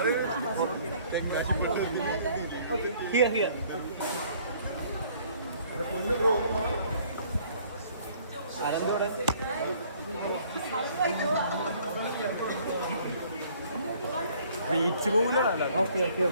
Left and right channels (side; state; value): both; inverted; correlation -0.58